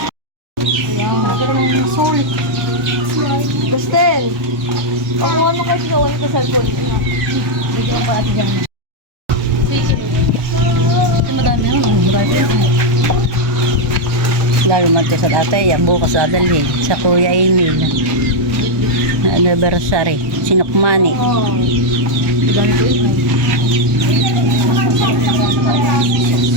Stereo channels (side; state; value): left; late; 1.2 ms